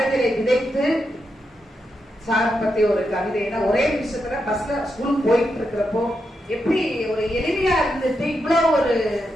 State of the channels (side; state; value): both; normal; correlation 0.85